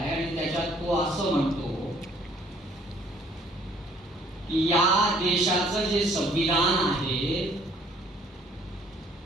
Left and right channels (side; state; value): both; normal; correlation 0.60